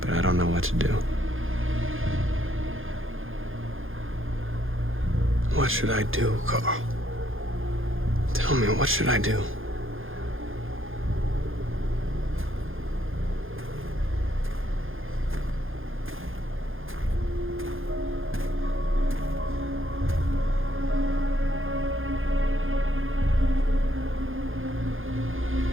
But I don't know what to do. What should I do, Carl? Tell me, what should I do?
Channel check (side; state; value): left; late; 0.59 ms